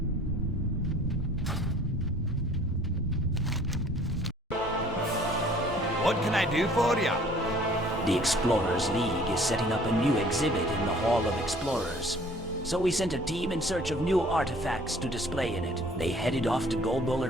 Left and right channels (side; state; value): both; normal; correlation 0.53